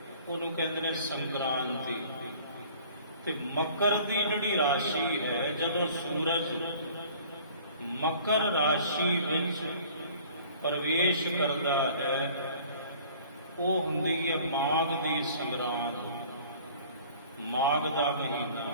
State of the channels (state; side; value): inverted; both; correlation -0.50